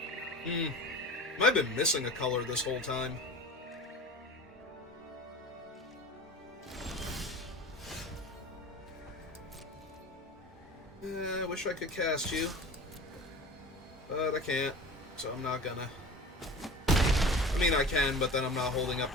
I've been missing a color this whole time. I wish I could cast you, but I can't, so I'm not gonna. I mean, I can, but then I'm not holding up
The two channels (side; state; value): both; normal; correlation 0.36